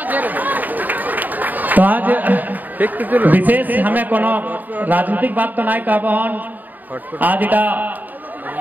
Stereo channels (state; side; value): late; left; 0.085 ms